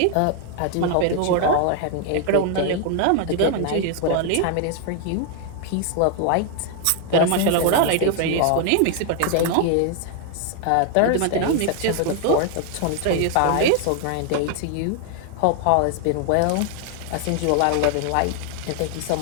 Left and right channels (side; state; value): both; different; correlation 0.00